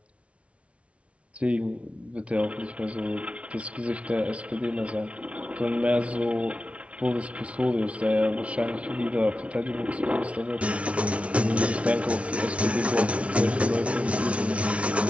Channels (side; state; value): left; late; 0.062 ms